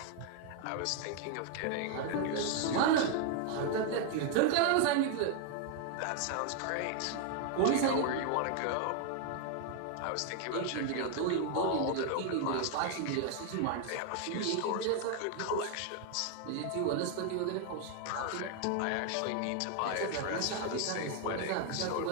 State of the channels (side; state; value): both; different; correlation 0.00